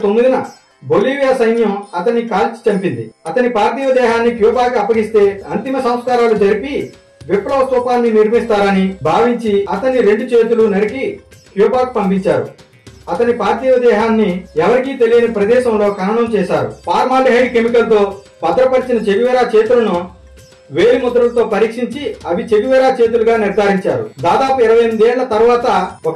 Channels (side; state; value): both; identical; correlation 1.00